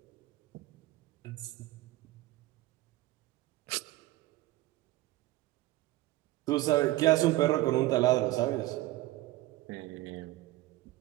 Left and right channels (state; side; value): quieter; left; 17.4 dB